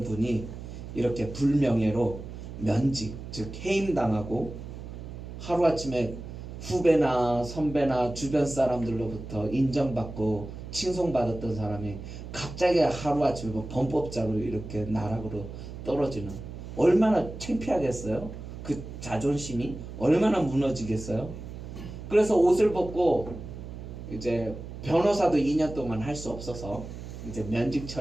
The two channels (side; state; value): right; noise; hum, 11 dB below the sound